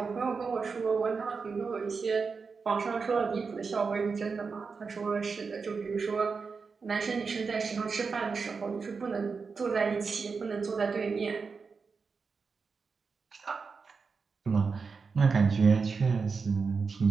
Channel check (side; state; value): left; quieter; 5.0 dB